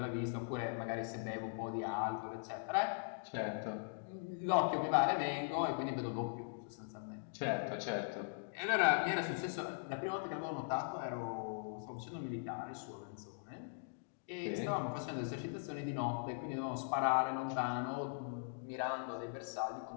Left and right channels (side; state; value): right; silent; digital silence